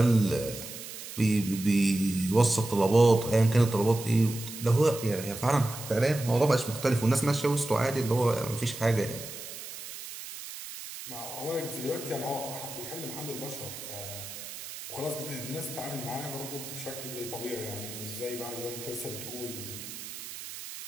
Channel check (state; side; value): noise; right; hiss, 11 dB below the sound